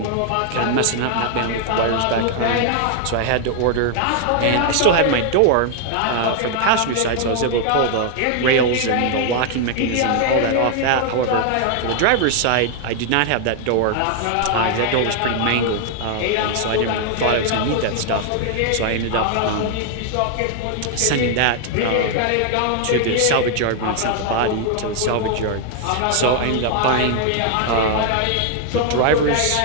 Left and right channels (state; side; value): different; both; correlation 0.00